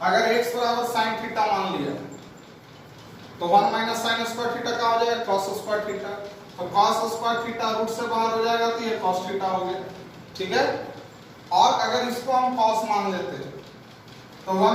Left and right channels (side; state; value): both; identical; correlation 1.00